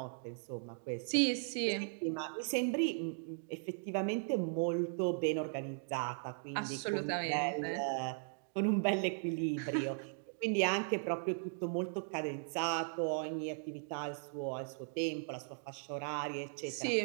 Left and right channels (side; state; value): left; silent; digital silence